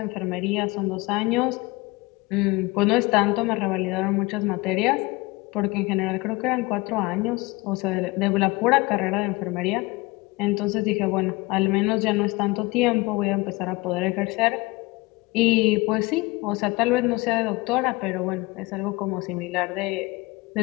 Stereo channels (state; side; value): quieter; right; 23.1 dB